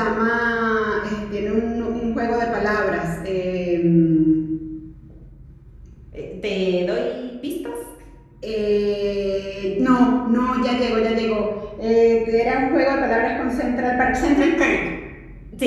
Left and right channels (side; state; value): both; identical; correlation 1.00